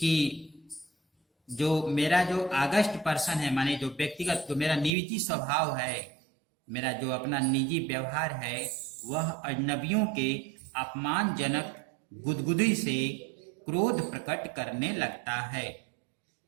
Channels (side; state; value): left; drops out; at 4.9 s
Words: जो मेरा जो अगस्ट पर्सन है, माने जो व्यक्तिगत, जो मेरा निजी स्वभाव है, मेरा जो अपना निजी व्यवहार है, वह अजनबियों के अपमानजनक गुदगुदी से क्रोध प्रकट करने लगता है।